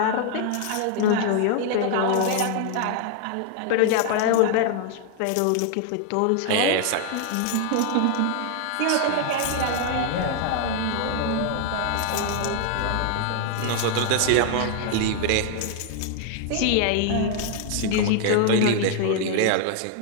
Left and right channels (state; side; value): different; both; correlation 0.00